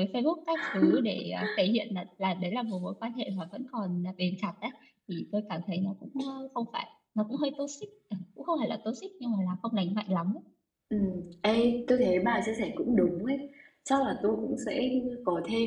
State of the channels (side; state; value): both; identical; correlation 1.00